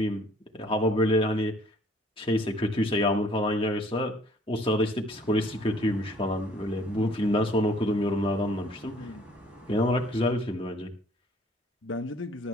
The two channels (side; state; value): both; normal; correlation 0.58